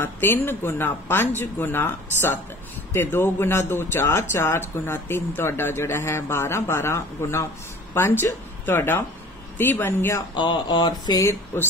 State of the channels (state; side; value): normal; both; correlation 0.45